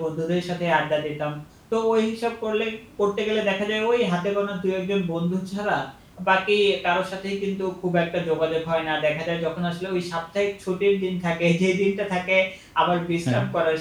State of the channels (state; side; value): identical; both; correlation 1.00